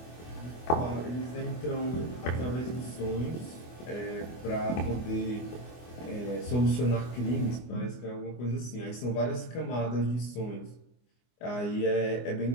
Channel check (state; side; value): late; right; 24 ms